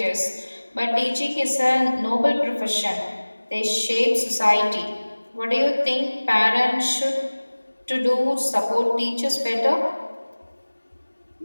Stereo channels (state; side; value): inverted; both; correlation -1.00